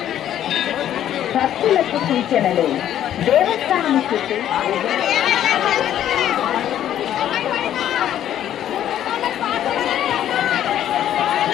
భక్తులకు సూచనలు. దేవస్థానం చుట్టూ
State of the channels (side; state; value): right; quieter; 11.1 dB